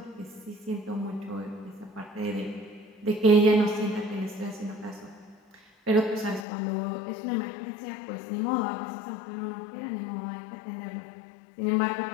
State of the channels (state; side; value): drops out; right; at 6.5 s